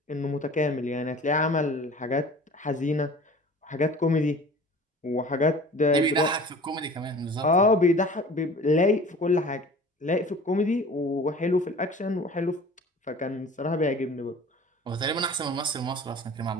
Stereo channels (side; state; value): both; normal; correlation 0.43